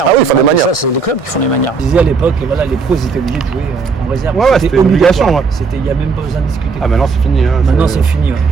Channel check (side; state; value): left; quieter; 4.9 dB